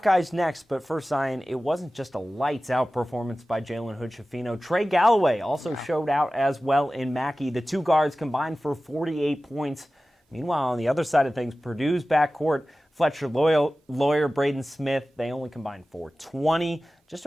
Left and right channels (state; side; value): normal; both; correlation 0.96